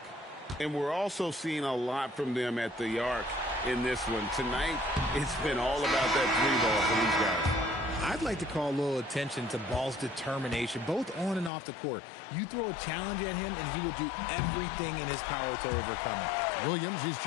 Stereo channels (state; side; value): drops out; right; at 11.5 s